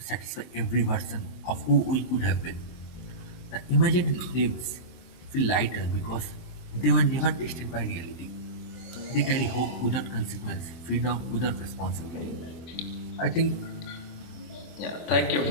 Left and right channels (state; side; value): late; right; 23 ms